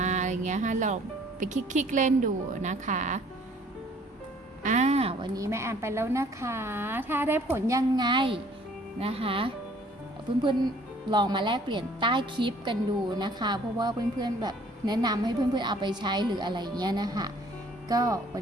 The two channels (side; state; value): both; normal; correlation 0.57